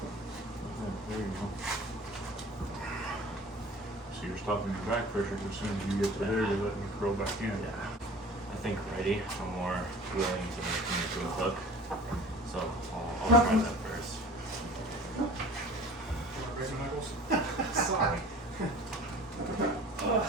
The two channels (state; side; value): normal; both; correlation 0.43